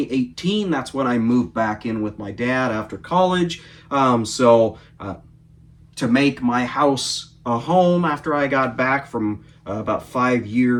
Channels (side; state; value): both; identical; correlation 1.00